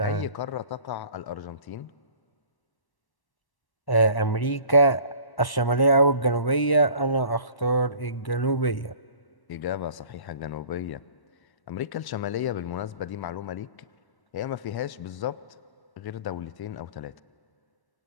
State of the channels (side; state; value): right; late; 1.1 ms